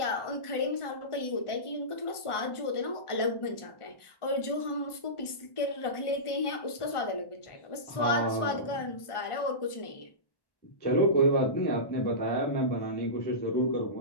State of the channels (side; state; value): right; late; 1.4 ms